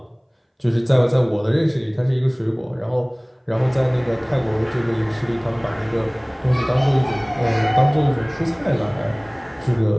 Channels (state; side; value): identical; both; correlation 1.00